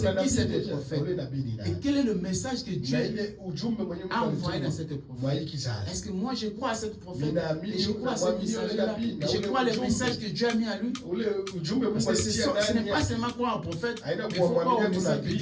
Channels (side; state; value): both; identical; correlation 1.00